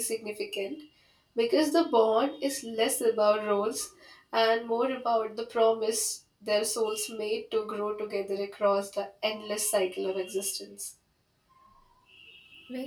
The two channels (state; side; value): identical; both; correlation 1.00